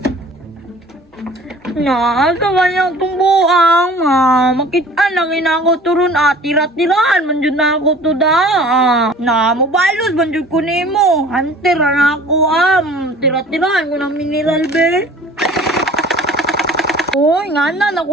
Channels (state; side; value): normal; both; correlation 0.48